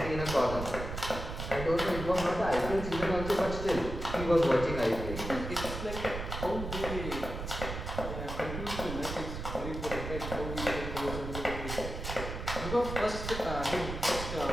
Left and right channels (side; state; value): right; noise; rumble, 6 dB below the sound